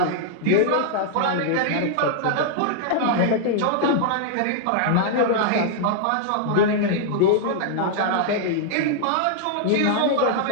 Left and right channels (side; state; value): both; different; correlation -0.01